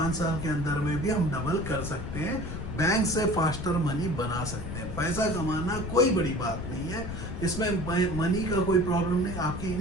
साल के अंदर में भी हम डबल कर सकते हैं, बैंक से फास्टर मनी बना सकते हैं। पैसा कमाना कोई बड़ी बात नहीं है, इसमें मनी का कोई प्रॉब्लम नहीं। आपकी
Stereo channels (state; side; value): noise; left; rumble, 6 dB below the sound